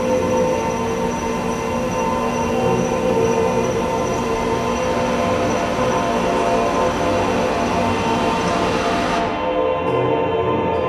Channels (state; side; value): identical; both; correlation 1.00